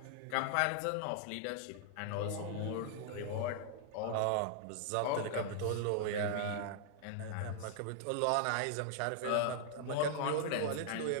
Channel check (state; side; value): different; both; correlation -0.01